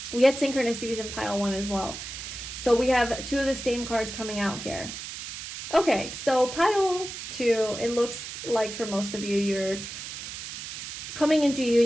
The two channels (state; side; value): noise; right; hiss, 9 dB below the sound